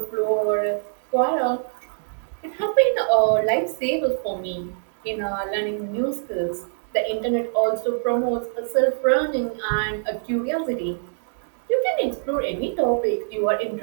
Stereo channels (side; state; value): left; silent; digital silence